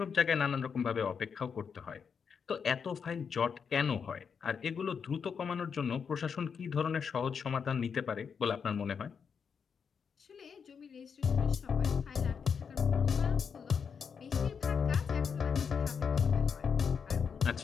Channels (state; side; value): quieter; right; 6.4 dB